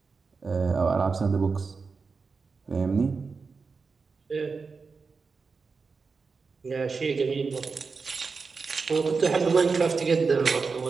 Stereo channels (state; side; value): quieter; left; 4.7 dB